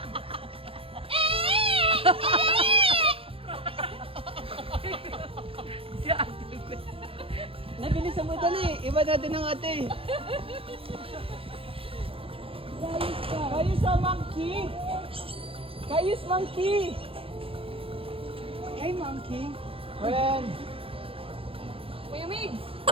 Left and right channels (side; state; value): left; late; 0.27 ms